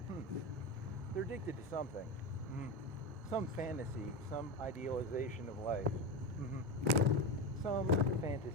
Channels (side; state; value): both; normal; correlation 0.19